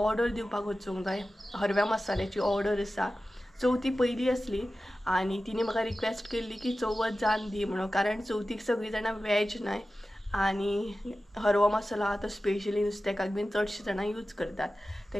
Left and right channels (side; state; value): both; normal; correlation 0.95